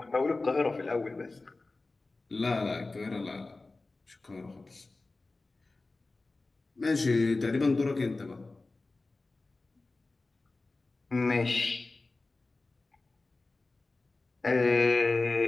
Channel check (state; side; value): quieter; right; 3.4 dB